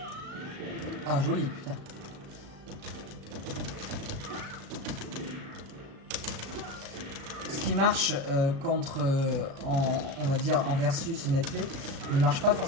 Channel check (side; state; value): left; late; 36 ms